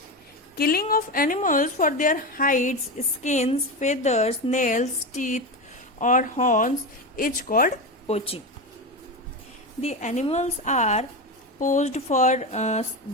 Killing of animals for their hides, skins, feathers, nails, teeth, or horns is called poaching. The animals are poached for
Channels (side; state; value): both; normal; correlation 0.18